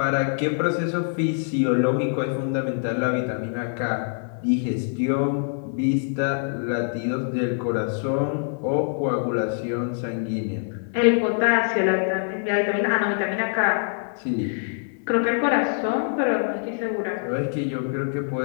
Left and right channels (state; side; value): silent; right; 62 dB below the other